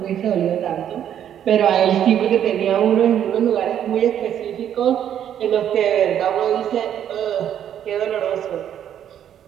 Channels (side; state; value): left; quieter; 9.9 dB